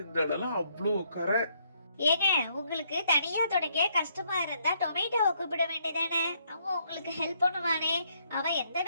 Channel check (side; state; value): both; inverted; correlation -0.71